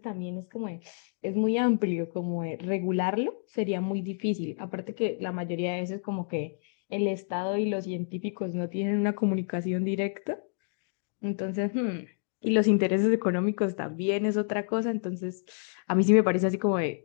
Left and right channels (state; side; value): silent; right; digital silence